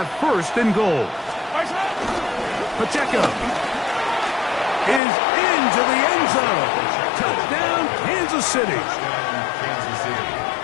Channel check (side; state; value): right; drops out; at 5.0 s